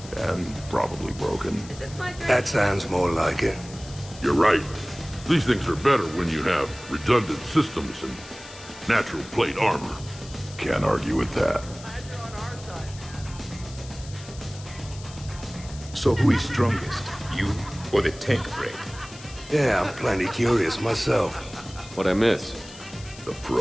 And probably broken. That sounds more like it. You're right. These things are better when you have redundant systems and natural plate armor. Can't argue with that. So who is strongest? You or the tank brain? Yeah, I'm plenty curious myself. What'd I miss? The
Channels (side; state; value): left; noise; hiss, 17 dB below the sound